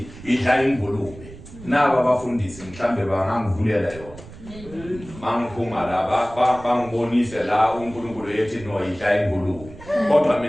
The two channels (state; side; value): noise; right; rumble, 17 dB below the sound